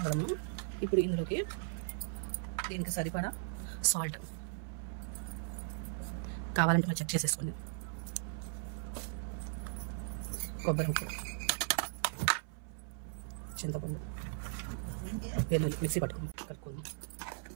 కదమ్మా. ఇప్పుడు ఇందులోకి దీనికి సరిపడా సాల్ట్ కావాలంటే మనం చెక్ చేసేసుకోండి. కొబ్బరి ముక్క, చింతపండు, వెల్లుల్లి మిక్సీ పట్టుకుందాం, కలుపుకుందాం.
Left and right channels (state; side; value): silent; left; 53 dB below the other